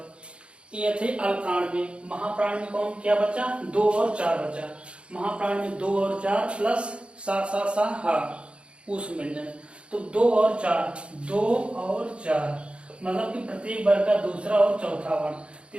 ये थे अल्प प्राण में। महाप्राण में कौन क्या बचा, 2 और 4 बचा। महाप्राण में 2 और 4 प्लस सा सा सा हा उस व्यंजन। तो 2 और 4, 2 और 4 मतलब कि प्रत्येक वर्ग का दूसरा और चौथा वर्ण।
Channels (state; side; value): late; left; 0.058 ms